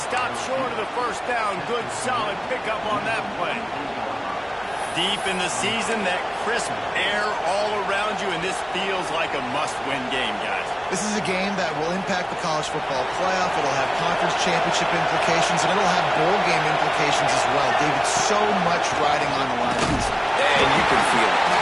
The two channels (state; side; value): identical; both; correlation 1.00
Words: short of the first down. Good, solid pickup on that play. Deep in the season, that crisp air all around you, and this feels like a must-win game, guys. This is a game that will impact the college football playoff. It'll have conference championship implications, and it'll have bowl game implications as well. David, so much riding on the line. And you can feel it.